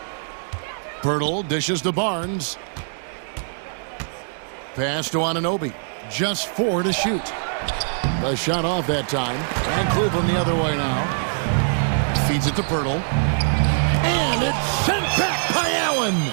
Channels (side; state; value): left; silent; digital silence